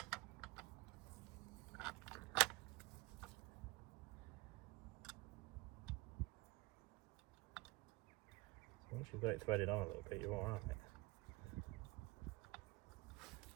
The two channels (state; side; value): quieter; left; 22.1 dB